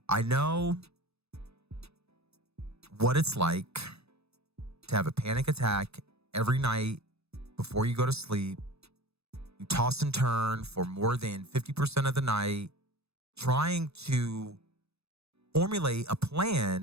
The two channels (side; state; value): left; late; 0.79 ms